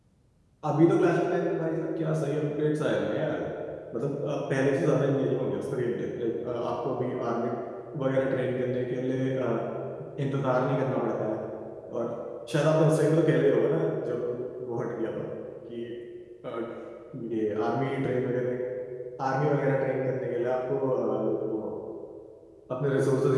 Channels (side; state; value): both; identical; correlation 1.00